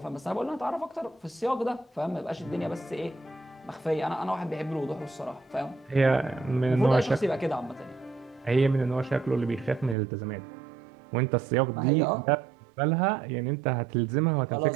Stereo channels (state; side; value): drops out; left; at 10.0 s